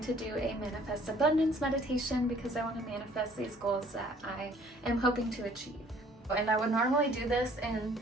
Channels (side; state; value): both; normal; correlation 0.57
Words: to do a manifest abundance meditation because I want to manifest these goals that I am hoping to achieve. And I would normally do this in